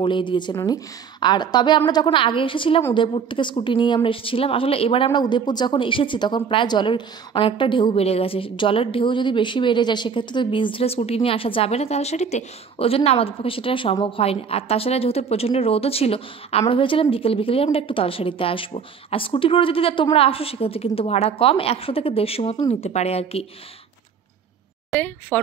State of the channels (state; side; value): quieter; left; 6.4 dB